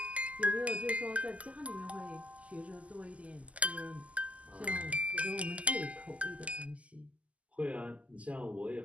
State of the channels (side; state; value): left; late; 0.067 ms